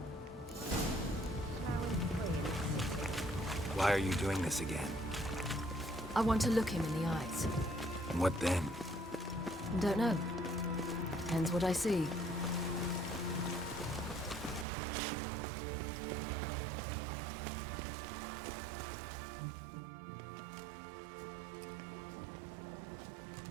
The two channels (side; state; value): left; drops out; at 14.7 s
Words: Why are you doing this again? I want to look him in the eyes. What then? Don't know. Depends what I see.